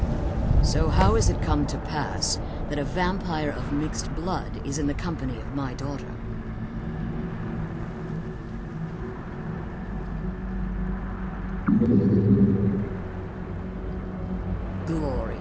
So how has it come to pass that a vampire of mixed blood is in the company of my daughter?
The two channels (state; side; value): identical; both; correlation 1.00